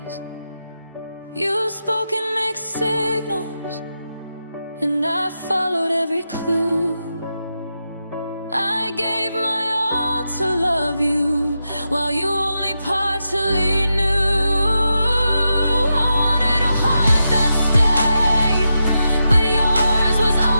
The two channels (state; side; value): inverted; both; correlation -0.87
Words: You spoke in mixed signals, and I followed every clue. I gave my all to love you while you only partially knew. I wanted a heart that stayed, but yours was